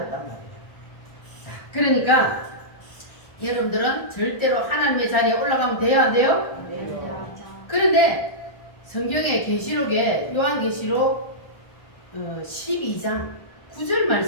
말이에요. 자, 그러니까 여러분들은 절대로 하나님의 자리에 올라가면 돼요, 안 돼요? 그런데 성경의 계시록에 요한계시록 12장 9절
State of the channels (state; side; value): late; right; 1.4 ms